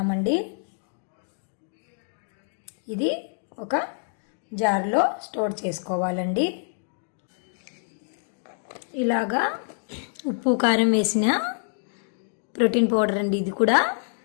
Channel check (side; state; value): right; silent; 61 dB below the other